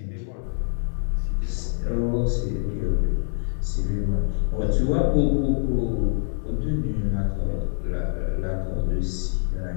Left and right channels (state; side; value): silent; right; 62 dB below the other